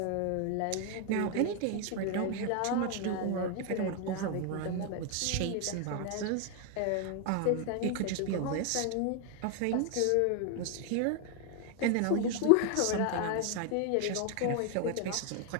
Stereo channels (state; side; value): different; both; correlation 0.00